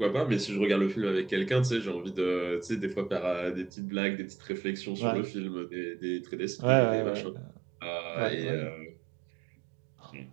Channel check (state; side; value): drops out; left; at 3.7 s